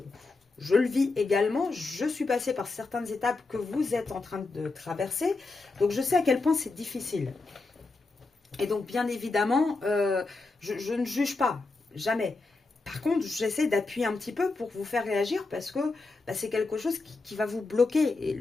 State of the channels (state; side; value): quieter; right; 3.6 dB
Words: je le vis également, je suis passée par certaines étapes que vous êtes en train de traverser, donc je sais à quel point c'est difficile. Et donc bien évidemment, je ne juge pas, jamais. Par contre, j'essaie d'appuyer un petit peu pour vous faire réagir parce que bah, c'est quelque chose qui va vous bloquer. Et